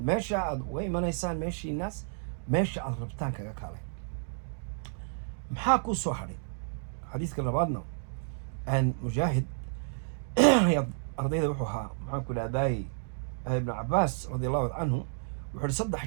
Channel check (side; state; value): left; silent; digital silence